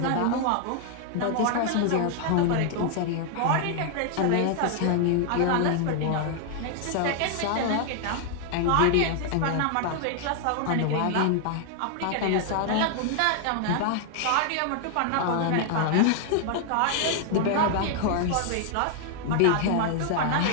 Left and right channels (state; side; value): different; both; correlation 0.00